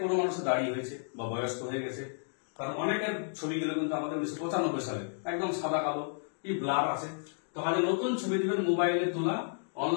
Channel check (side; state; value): right; silent; digital silence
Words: কোনো মানুষের দাঁড়িয়ে হয়েছে বা বয়স্ক হয়ে গেছে, কারণ অনেকের ছবিগুলো কিন্তু আমাদের 1995 সালে একদম সাদা কালো, কি ব্লার আছে। তো কাজে নতুন ছবি দিবেন, মোবাইলে তোলা,